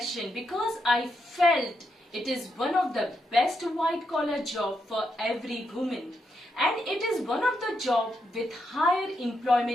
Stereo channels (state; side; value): normal; both; correlation 0.82